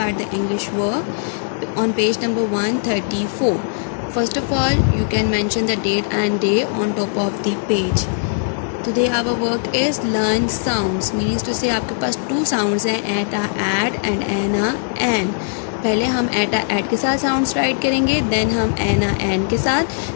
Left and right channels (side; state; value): right; silent; digital silence